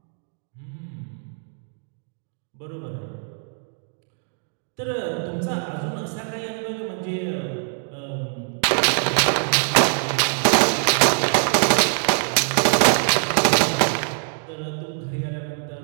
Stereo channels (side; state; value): left; silent; 63 dB below the other